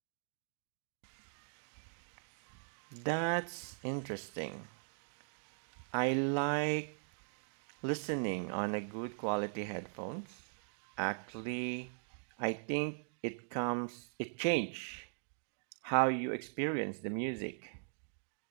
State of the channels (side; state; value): left; silent; digital silence